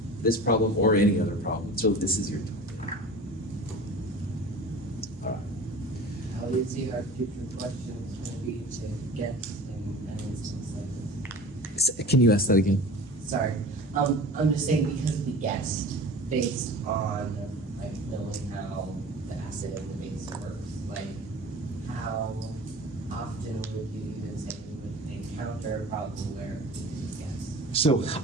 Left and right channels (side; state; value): both; normal; correlation 0.38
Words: this problem or any other problem? So this is your time. All right. How easy are future questions going to be to guess in an instance like this? Can you ask that again? Sorry, I'm just saying because we guessed based on like knowing how the acid and the base works, like how often would you even say you would encounter a problem where you just guess? So